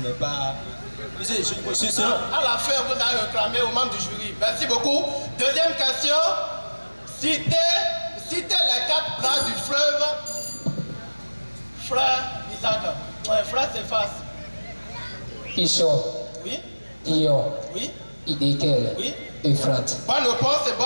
n'est pas... À la fin, vous allez réclamer aux membres du jury. Merci beaucoup. Deuxième question. Citez les 4 branches du fleuve. Frère Isaac. Ouais, frère Céphas. Pishon. Oui. Ion. Oui. Idékel. Oui. Euphrate. Bonne réponse et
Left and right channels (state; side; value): inverted; both; correlation -1.00